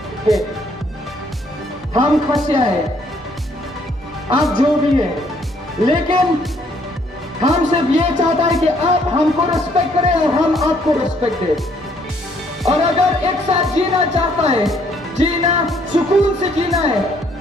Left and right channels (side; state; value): both; normal; correlation 0.66